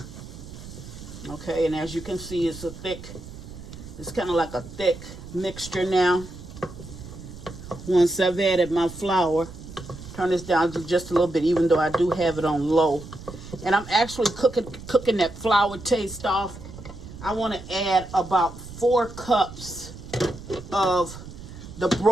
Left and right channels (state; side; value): noise; right; rumble, 14 dB below the sound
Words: Okay, and as you can see, it's kind of like a thick mixture now. Once I've added my flour, turn this down to just a little bit, even though I do have it on low. And I'm actually cooking that flour taste off. I want to add about 4 cups of the